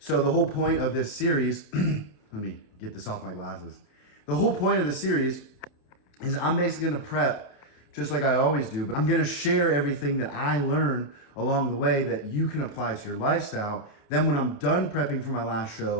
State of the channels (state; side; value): late; right; 29 ms